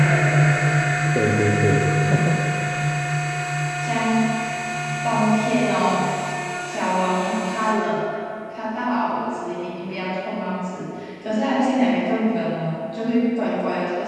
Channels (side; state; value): both; identical; correlation 1.00